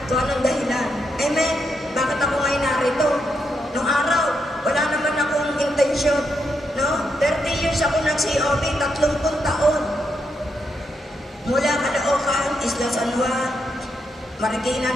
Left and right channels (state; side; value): normal; both; correlation 0.81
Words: kung anong dahilan. Amen? Bakit ako ngayon narito? Nung araw, wala naman akong intensyon. No? 30 years ako nag-COB, 30 taon. Mula Caloocan, Isla San Juan, Marikina,